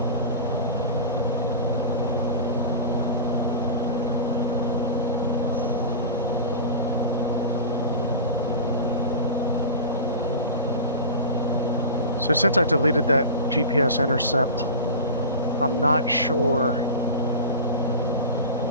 So since I deleted that GPS intercept, I'm not sure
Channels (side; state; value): both; inverted; correlation -0.31